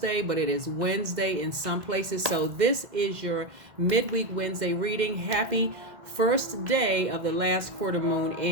but it is Wednesday in some places. So this is your midweek Wednesday reading. Happy first day of the last quarter moon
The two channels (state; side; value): late; left; 2.1 ms